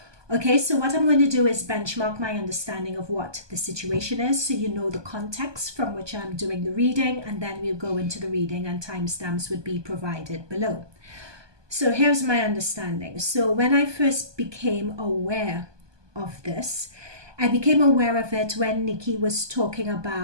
Okay, so what I'm going to do is benchmark my understanding of what the situation is so you know the context from which I'm doing the reading, and then we'll go into the reading and timestamps would be provided below. So here's my understanding. So when I first became aware of this, I became aware of it when Nikki was talking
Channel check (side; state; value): left; late; 1.2 ms